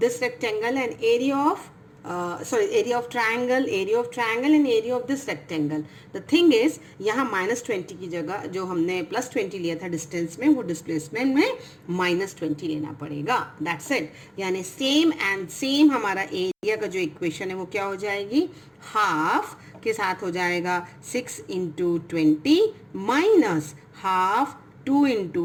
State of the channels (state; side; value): identical; both; correlation 1.00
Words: rectangle and area of area of triangle and area of this rectangle. The thing is यहाँ -20 की जगह जो हमने +20 लिया था डिस्टेंस में, वो डिस्प्लेसमेंट में -20 लेना पड़ेगा, that's it। यानी सेम एंड सेम हमारा एरिया का जो इक्वेशन है वो क्या हो जाएगी, हाफ के साथ हो जाएगा 6 × 20 माइनस हाफ 2